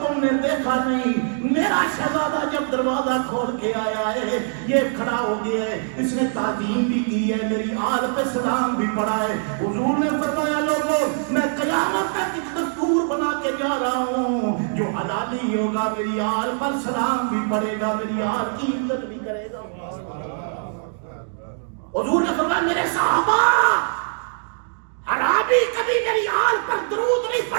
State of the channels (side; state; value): left; silent; digital silence